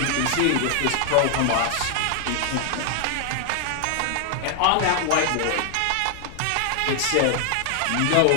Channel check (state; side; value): different; both; correlation 0.00